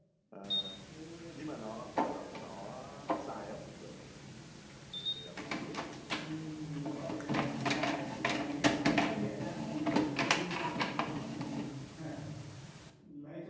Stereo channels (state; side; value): identical; both; correlation 1.00